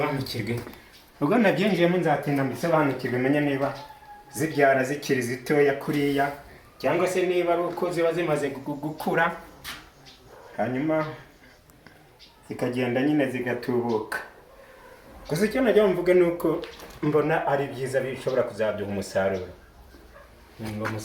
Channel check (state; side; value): identical; both; correlation 1.00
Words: Ubwo nabyinjiyemo nzatinda mbisobanukirwe, menye niba zibyara zikiri zitoya kuriya cyangwa se niba ari uko ziba zimaze gukura hanyuma zikagenda nyine zigatubuka. Gusa icyo najya mvuga ni uko mbona ari byiza, bishobora kuzaduha umusaruro. Ngo